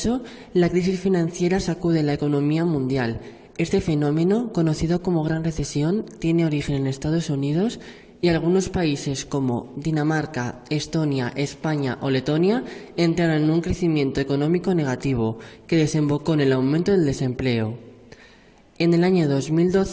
la crisis financiera sacude la economía mundial. Este fenómeno, conocido como Gran Recesión, tiene origen en Estados Unidos y algunos países como Dinamarca, Estonia, España o Letonia entraron en un crecimiento económico negativo que desembocó en el aumento del desempleo. En el año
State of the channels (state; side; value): identical; both; correlation 1.00